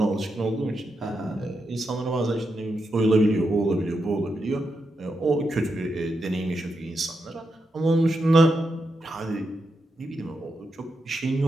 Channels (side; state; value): both; normal; correlation 0.85